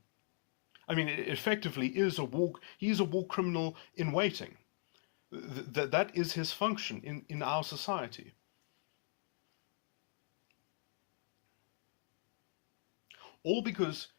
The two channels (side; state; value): right; silent; digital silence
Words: I mean, it effectively is he is a war criminal in waiting. That is his function in our society. All because